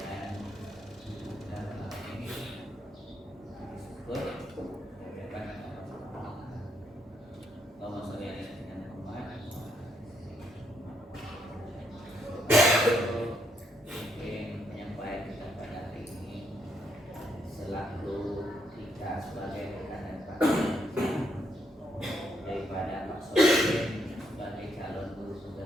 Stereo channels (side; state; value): both; normal; correlation 0.76